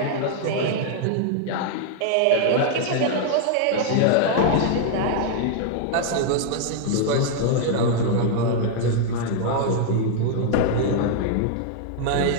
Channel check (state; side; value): different; both; correlation -0.01